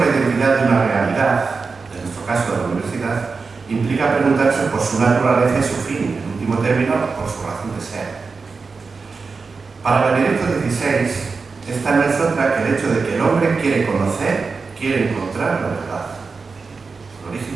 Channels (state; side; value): quieter; left; 4.6 dB